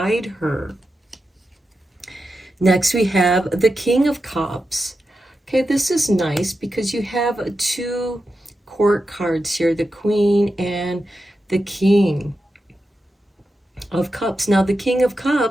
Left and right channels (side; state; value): both; normal; correlation 0.90